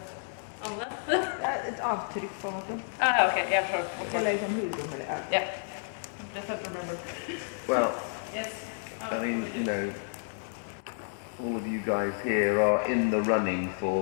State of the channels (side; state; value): right; silent; digital silence